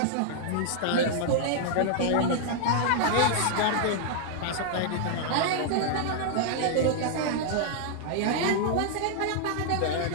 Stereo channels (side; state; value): both; different; correlation -0.01